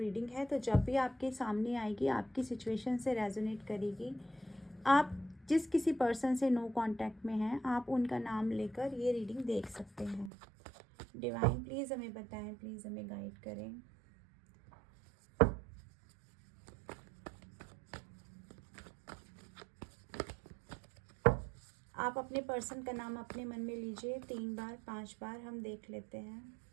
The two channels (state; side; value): drops out; left; at 10.3 s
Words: है। तो जब भी आपके सामने आएगी, आपकी सिचुएशन से रेजोनेट करेगी, आप जिस किसी पर्सन से नो कांटेक्ट में हैं, आप उनका नाम लेकर ये रीडिंग देख सकते हैं। डिवाइन प्लीज़ हमें बताएं, प्लीज़ हमें गाइड करें। आप अपने पर्सन का नाम अपने मन में लीजिए 3 बार 5 बार, हम देख लेते हैं।